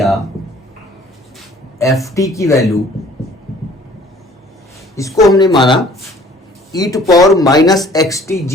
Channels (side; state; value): both; normal; correlation 0.54